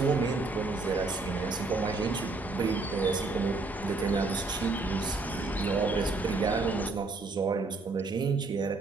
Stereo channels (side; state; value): left; quieter; 3.6 dB